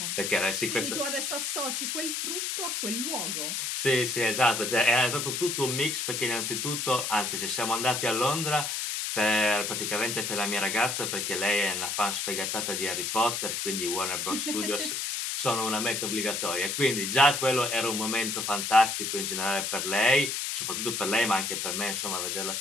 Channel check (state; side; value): noise; left; hiss, 2 dB below the sound